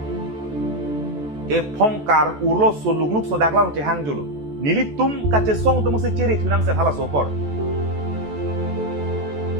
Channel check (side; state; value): left; late; 14 ms